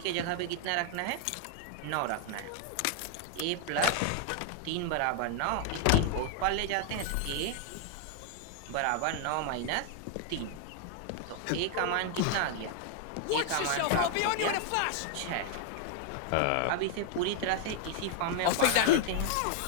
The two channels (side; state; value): both; different; correlation 0.00